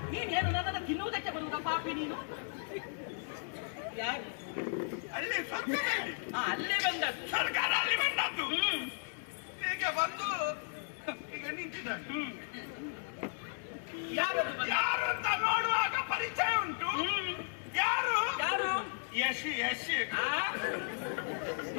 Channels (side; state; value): right; silent; 54 dB below the other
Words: ನೀನೇನು ನನ್ನನ್ನು ತಿನ್ನುವುದಕ್ಕೆ ಬರುವುದ ಪಾಪಿ ನೀನು? ಯಾಕೆ ಅಲ್ಲಿ ಸರ್ಕಾರದಲ್ಲಿ ಅಲ್ಲೇ ಬಂದದ್ದು. ಸರ್ಕಾರ ಅಲ್ಲಿ ಬಂದದ್ದು. ಹೀಗೆ ಬಂದು ಈಗ ನಿಂತಿದ್ದಾರೆ. ಯಾರು ಅಂತ ನೋಡುವಾಗ ಪರಿಚಯ ಉಂಟು. ಯಾರು ಯಾರು? ಯಶ್ ಯಶ್